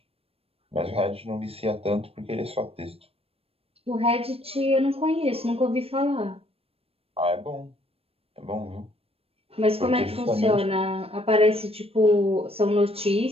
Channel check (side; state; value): left; late; 0.28 ms